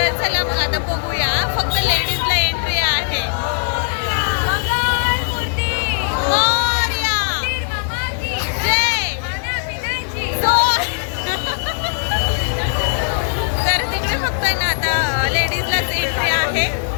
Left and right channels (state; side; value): silent; right; 59 dB below the other